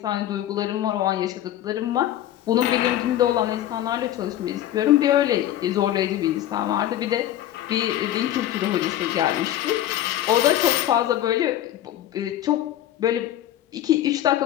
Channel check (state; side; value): quieter; right; 12.5 dB